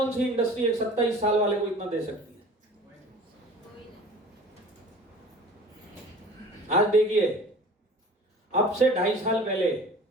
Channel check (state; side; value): normal; both; correlation 0.44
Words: सी इंडस्ट्री एक 27 साल वाले को इतना दे सकती है? आज देखिए, अब से 2.5 साल पहले